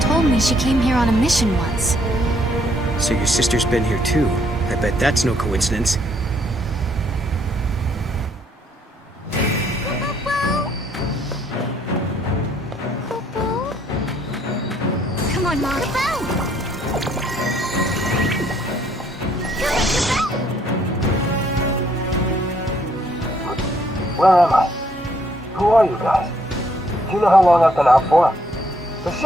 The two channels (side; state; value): both; normal; correlation 0.68